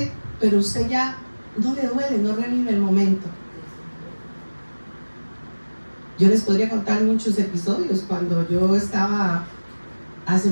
pero usted ya no le duele, no revive el momento. Yo les podría contar muchos episodios. Cuando yo estaba hace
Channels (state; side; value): inverted; both; correlation -1.00